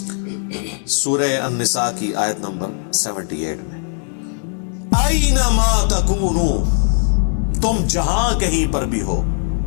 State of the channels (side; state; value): right; silent; 56 dB below the other